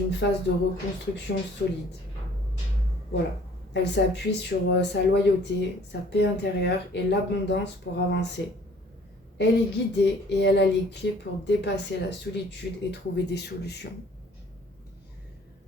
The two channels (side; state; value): both; normal; correlation 0.55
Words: phase de reconstruction solide. Voilà. Elle s'appuie sur sa loyauté, sa paix intérieure et l'abondance pour avancer. Elle est guidée et elle a les clés pour dépasser la solitude et trouver des solutions.